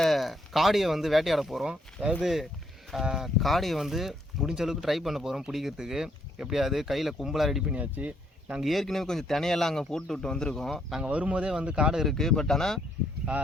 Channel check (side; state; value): both; normal; correlation 0.71